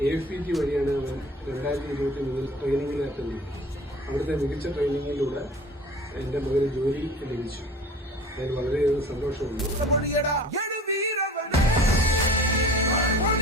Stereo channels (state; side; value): normal; both; correlation 0.43